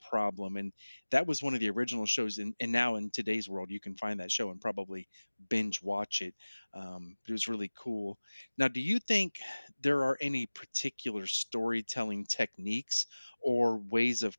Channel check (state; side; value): inverted; both; correlation -1.00